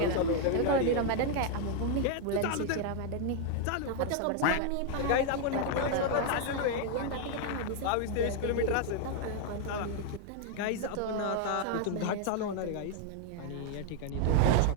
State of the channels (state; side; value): different; both; correlation 0.00